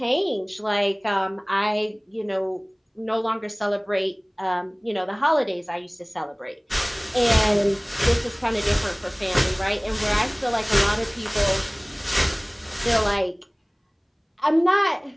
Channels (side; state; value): both; identical; correlation 1.00